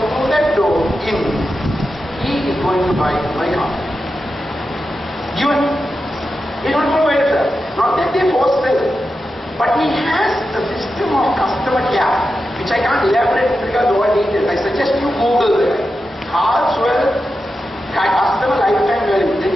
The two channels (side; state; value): both; normal; correlation 0.90